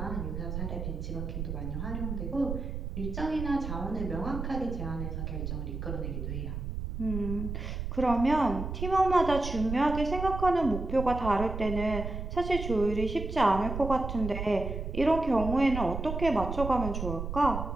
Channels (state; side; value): noise; right; rumble, 5 dB below the sound